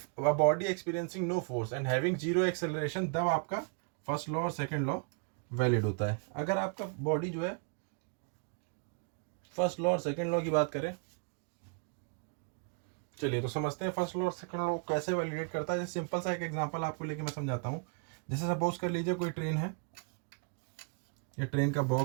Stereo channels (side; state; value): left; quieter; 34.5 dB